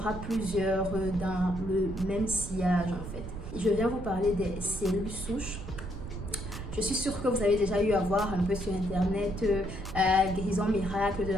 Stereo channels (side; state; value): right; noise; rumble, 9 dB below the sound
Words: plusieurs dans le même sillage en fait. Je viens vous parler des cellules souches. Je suis sûre que vous avez déjà eu à voir un peu sur internet guérison miracle de